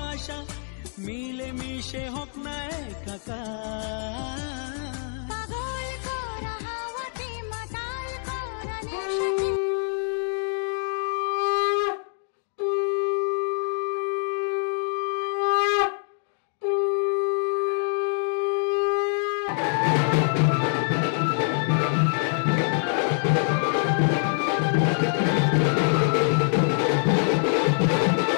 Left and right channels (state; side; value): silent; right; 58 dB below the other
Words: মিলে মিশে হোক না একাকার।